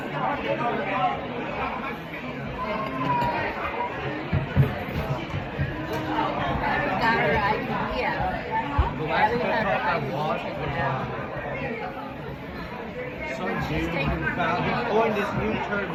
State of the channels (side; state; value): both; identical; correlation 1.00